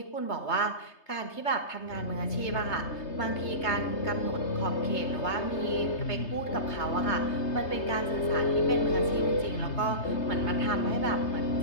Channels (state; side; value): late; right; 3.3 ms